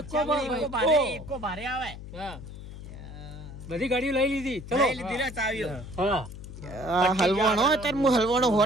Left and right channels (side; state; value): left; noise; hum, 12 dB below the sound